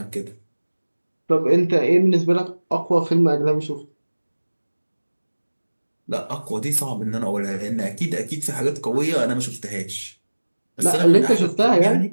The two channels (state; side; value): inverted; both; correlation -1.00